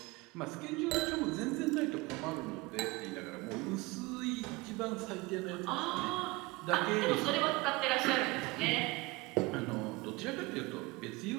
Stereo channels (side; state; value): left; quieter; 22.7 dB